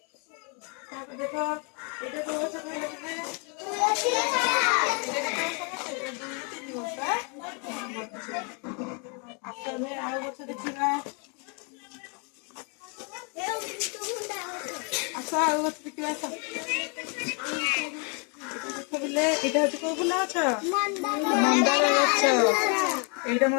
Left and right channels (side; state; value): right; quieter; 36.6 dB